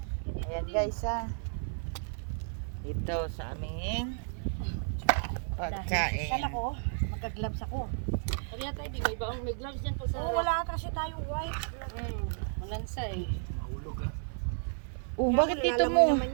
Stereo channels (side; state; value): left; silent; 56 dB below the other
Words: Ayan guys ha. Dito sa aming pagkain. Sala ko, nagka-gloves ako. Kaya tayo, di may baong may gloves dyan pag sa Oh, wala kasi tayong white. malansa eh. Oh, bakit dito Lalamoy mo? naman